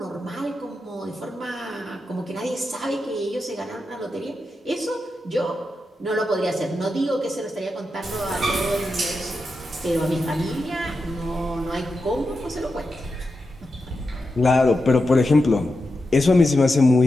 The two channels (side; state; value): both; normal; correlation 0.89